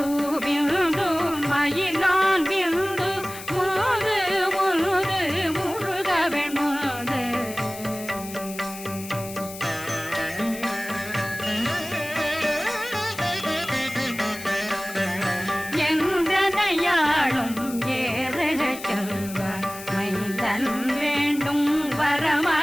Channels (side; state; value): left; noise; hiss, 13 dB below the sound